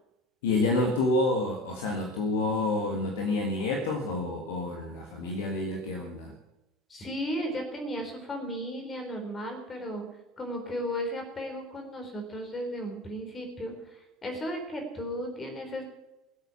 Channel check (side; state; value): both; normal; correlation 0.32